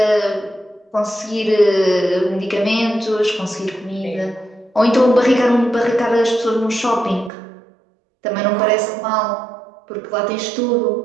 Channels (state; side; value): drops out; left; at 7.3 s